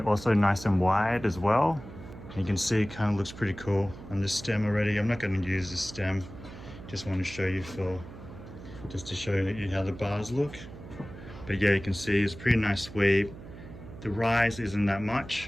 also nice and wide as well. You can see it kind of looks pretty cool on this stem already. I'm not going to use this stem, just want to show you just to show you how the bars look. But yeah, you can see it's pretty nice sweep. The rise isn't that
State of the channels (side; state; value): right; noise; hum, 15 dB below the sound